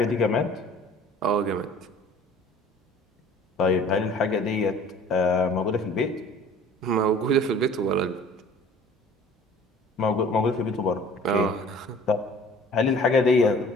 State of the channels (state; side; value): normal; both; correlation 0.49